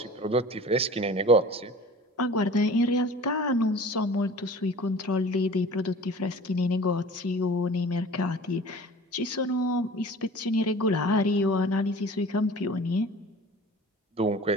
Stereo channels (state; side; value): normal; both; correlation 0.43